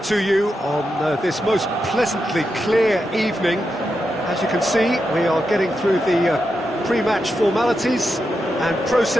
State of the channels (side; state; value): both; normal; correlation 0.87